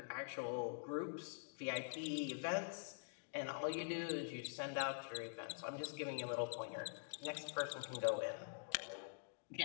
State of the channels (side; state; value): right; silent; digital silence